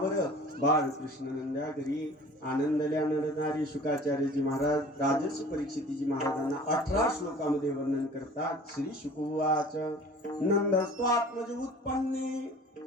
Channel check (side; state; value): both; normal; correlation 0.45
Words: बाळकृष्ण नंदा घरी आनंदल्या नर नारी. शुकाचार्यजी महाराज राजर्षी परीक्षितजी महाराजांना 18 श्लोकामध्ये वर्णन करतात. श्री शुकवाच नंदस्त्व आत्मज उत्पन्ने,